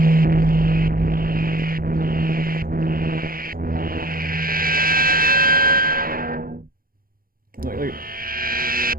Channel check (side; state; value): left; late; 0.42 ms